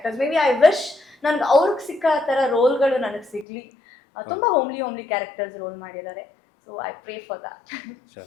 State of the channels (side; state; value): right; drops out; at 3.5 s